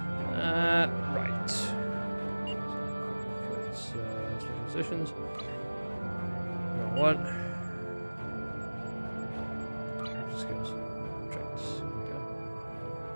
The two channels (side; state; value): both; inverted; correlation -1.00